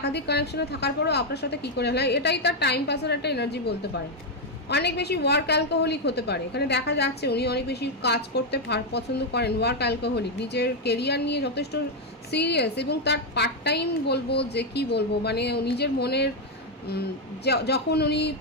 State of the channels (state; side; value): normal; both; correlation 0.03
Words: কানেকশনে থাকার পরেও আপনার সাথে কি করে হয়, এটাই তার টাইম পাসের একটা এনার্জি বলতে পারে। অনেক বেশি ওয়ার্ক অ্যালকোহলিক হতে পারে। এখানে দেখা যাচ্ছে উনি অনেক বেশি কাজ করতে পছন্দ করেন, ওয়ার্ক অ্যালকোহলিক, নিজের কেরিয়ার নিয়ে যথেষ্ট সিরিয়াস এবং তার পার্ট টাইম বলবো যে কি বলবো, মানে নিজের মনের যখন উনি